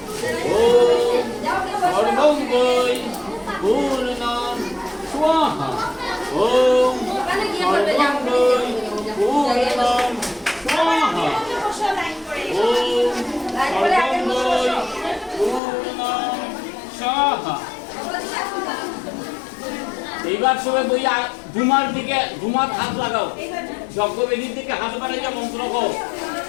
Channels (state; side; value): drops out; right; at 15.6 s